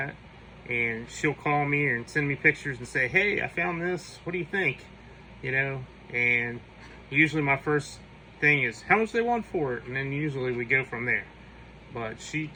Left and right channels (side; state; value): both; identical; correlation 1.00